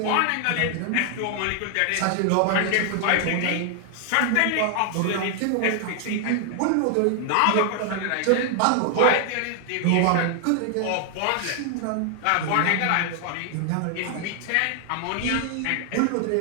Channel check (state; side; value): different; both; correlation 0.00